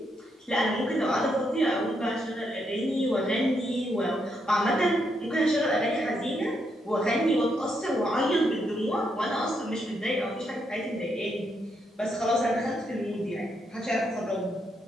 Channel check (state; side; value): normal; both; correlation 0.78